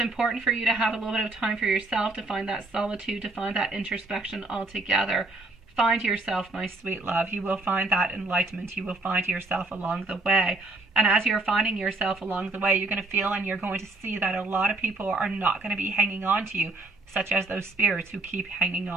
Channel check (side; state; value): left; quieter; 3.1 dB